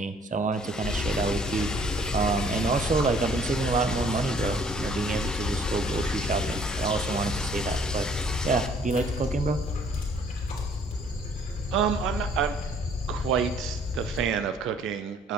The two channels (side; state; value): both; normal; correlation 0.59